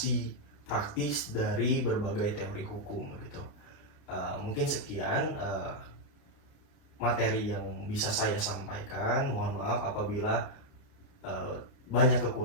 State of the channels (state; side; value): late; right; 29 ms